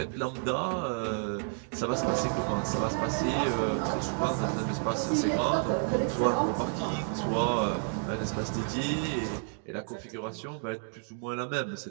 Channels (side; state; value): left; silent; 57 dB below the other